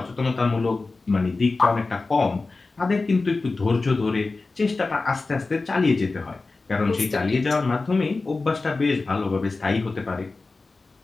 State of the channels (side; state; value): right; quieter; 3.7 dB